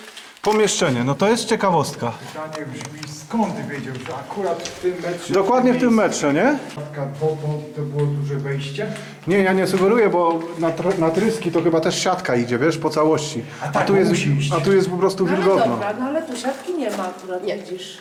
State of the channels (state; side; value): identical; both; correlation 1.00